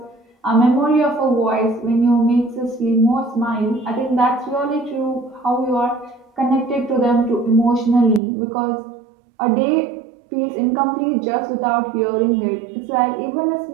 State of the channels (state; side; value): drops out; left; at 8.2 s